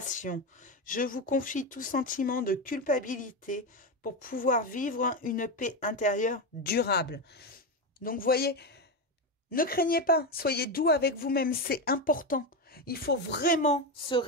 Je vous confie tout sentiment de culpabilité pour pouvoir vivre une paix intérieure durable. Donc, vous voyez, ne craignez pas, soyez doux avec vous-même, c'est important. Il faut vraiment se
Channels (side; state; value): both; normal; correlation 0.14